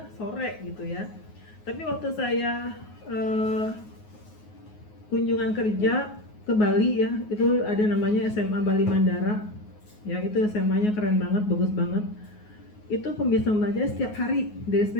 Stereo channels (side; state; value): right; late; 9.5 ms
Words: sore gitu ya. Tapi waktu saya kunjungan kerja ke Bali ya, itu ada namanya SMA Bali Mandara. Ya itu SMA-nya keren banget, bagus banget. Itu pembiasaan membacanya setiap hari dari